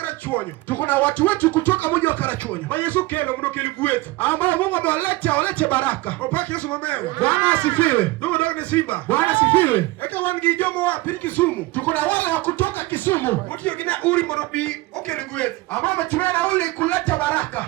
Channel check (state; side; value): quieter; left; 20.1 dB